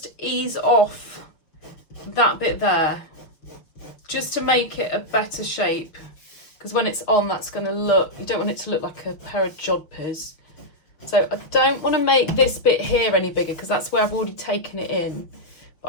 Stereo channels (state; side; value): late; right; 6.2 ms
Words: ease off that bit there, just to make it a better shape, because when it's on, that's going to look, you don't want it to look like a pair of jodhpurs. So I don't want to make this bit here any bigger, because that's where I've already taken it in,